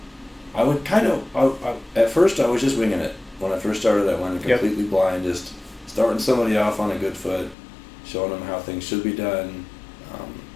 would at first I was just winging it. When I first started, I went completely blind, just starting somebody off on a good foot, showing them how things should be done.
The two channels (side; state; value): right; drops out; at 7.6 s